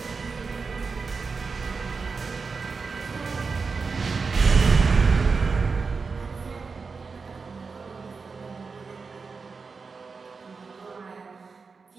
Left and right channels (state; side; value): quieter; left; 4.8 dB